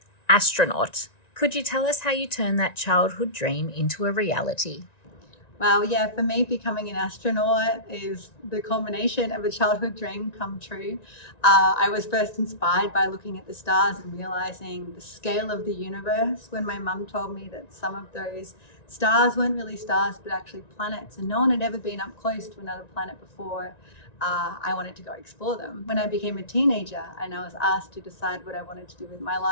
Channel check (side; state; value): right; late; 1.9 ms